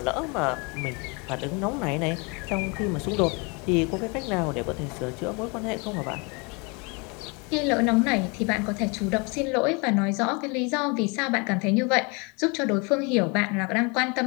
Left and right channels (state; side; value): quieter; right; 30.6 dB